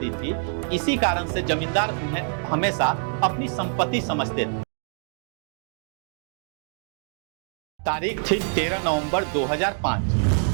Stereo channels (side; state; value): left; silent; 61 dB below the other